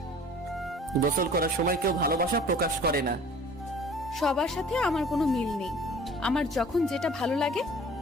গোসল করার সময় কেউ ভালোবাসা প্রকাশ করে না। সবার সাথে আমার কোনো মিল নেই। আমার যখন যেটা ভালো লাগে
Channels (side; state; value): both; normal; correlation 0.47